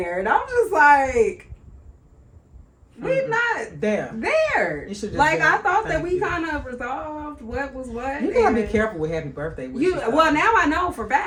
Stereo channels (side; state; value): both; identical; correlation 1.00